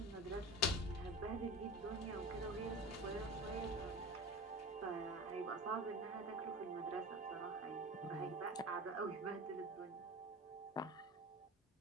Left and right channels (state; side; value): normal; both; correlation 0.31